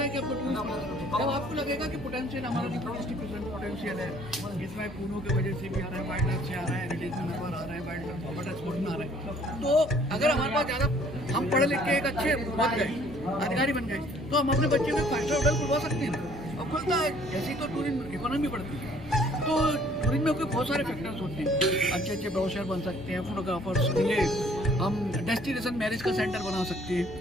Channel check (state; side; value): normal; both; correlation 0.59